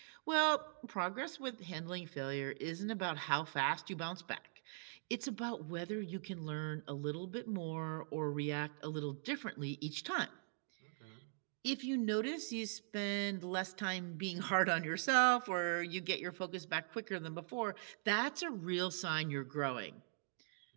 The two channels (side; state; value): left; silent; digital silence